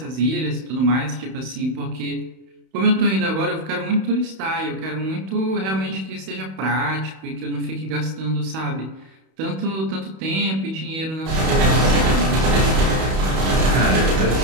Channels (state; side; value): late; left; 31 ms